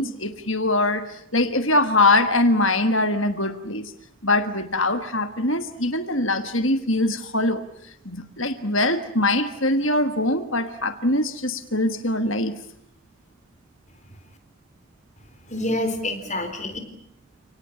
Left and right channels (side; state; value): both; normal; correlation 0.05